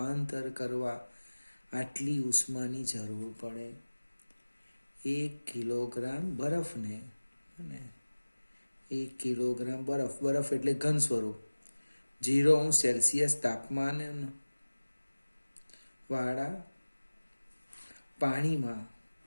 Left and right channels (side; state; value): both; inverted; correlation -1.00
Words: કરવા આટલી ઉષ્માની જરૂર પડે. 1 કિલોગ્રામ બરફને, 1 કિલોગ્રામ બરફ એટલે ઘન સ્વરૂપ, 0°C તાપમાન વાળા પાણીમાં